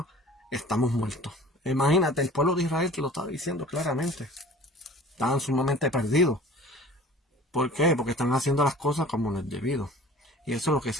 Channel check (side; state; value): both; normal; correlation 0.45